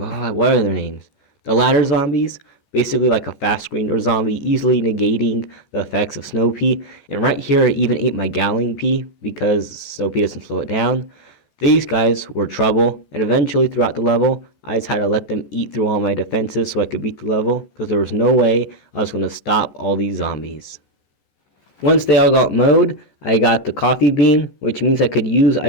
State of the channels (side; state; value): right; late; 14 ms